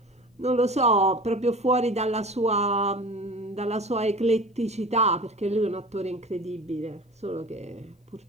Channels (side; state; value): both; normal; correlation 0.38